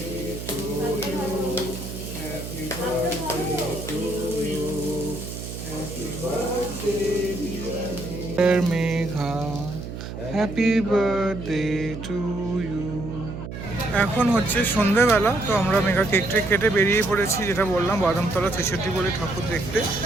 Megha, happy birthday to you. এখন হচ্ছে সন্ধ্যেবেলা, তো আমরা মেঘা কেক টেক কেটে বেরিয়ে পড়েছি, যেটা বললাম বাদামতলা 66 বলে ঠাকুর দেখতে।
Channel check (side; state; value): right; noise; hum, 9 dB below the sound